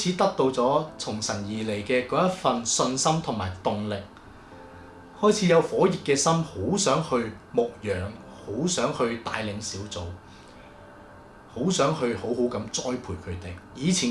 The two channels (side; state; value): both; identical; correlation 1.00